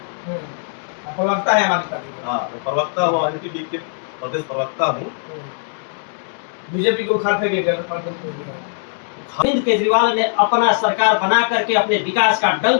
प्रवक्ता है हमारे पार्टी। हाँ, मैं प्रवक्ता हूँ, एनपीपी के प्रदेश प्रवक्ता हूँ। बीजेपी को उखाड़ फेंकेगा। अरविंद केजरीवाल ने अपना सरकार बना करके अपने विकास का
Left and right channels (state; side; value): silent; right; digital silence